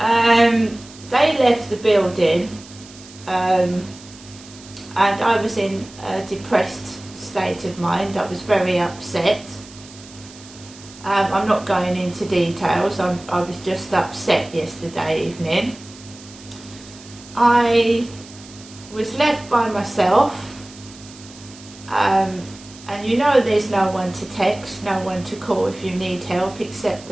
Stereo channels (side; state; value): right; noise; hiss, 20 dB below the sound